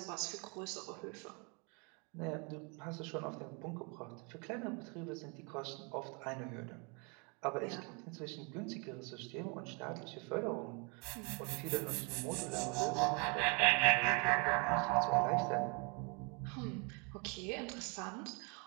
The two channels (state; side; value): quieter; left; 32.8 dB